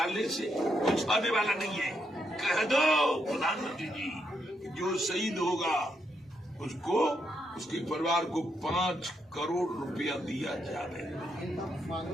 से कुछ होने वाला नहीं है। कह दो प्रधानमंत्री जी, जो शहीद होगा उसको, उसके परिवार को 5 करोड़ रुपया दिया जाए।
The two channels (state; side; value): normal; both; correlation 0.79